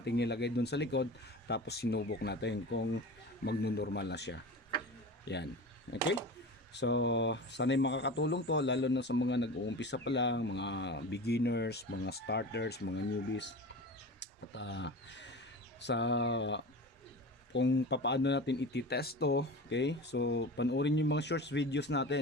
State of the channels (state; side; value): normal; both; correlation 0.32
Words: natin nilagay doon sa likod, tapos sinubok natin kung magno-normal na siya. Yan, okay. So, sana'y makakatulong to lalo na sa mga nag-uumpisa pa lang, mga beginners, mga starters, mga newbies. At sa kung papaano natin ititest to, okay? So, panoorin yung mga shorts videos